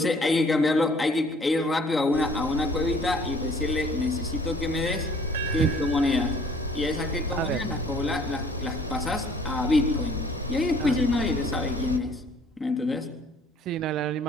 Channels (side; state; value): both; normal; correlation 0.56